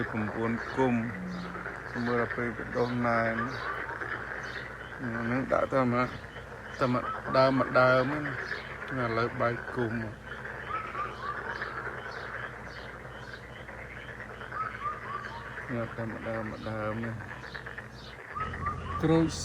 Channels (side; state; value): both; identical; correlation 1.00